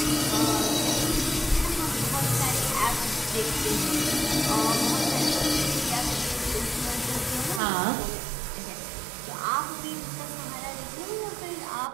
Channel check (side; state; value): left; drops out; at 7.6 s